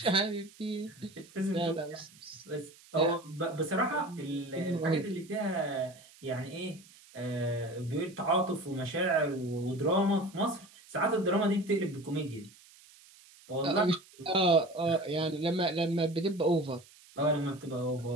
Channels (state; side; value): noise; right; hiss, 24 dB below the sound